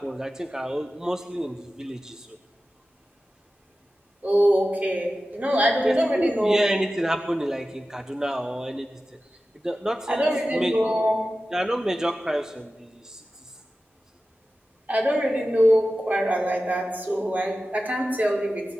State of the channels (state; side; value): normal; both; correlation 0.94